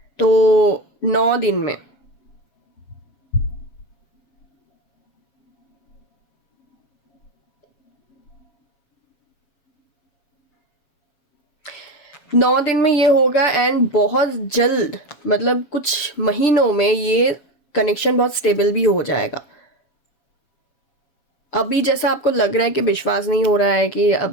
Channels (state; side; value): late; right; 7.2 ms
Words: तो 9 दिन में, ये होगा। एंड बहुत जल्द, मतलब कुछ महीनों में ये कनेक्शन बहुत स्टेबल भी हो जाएगा। अभी जैसा आपको लग रहा है कि विश्वास नहीं हो रहा है कि